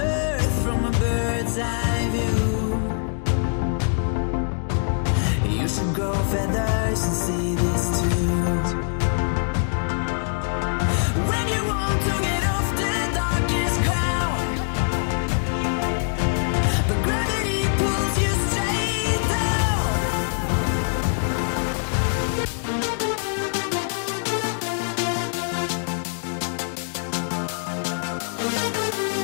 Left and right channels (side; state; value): right; silent; digital silence